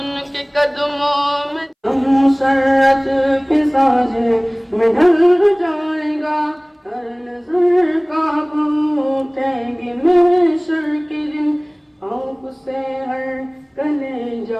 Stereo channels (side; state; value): both; identical; correlation 1.00